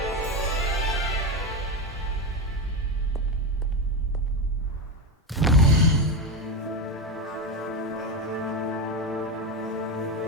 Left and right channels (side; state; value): both; normal; correlation 0.14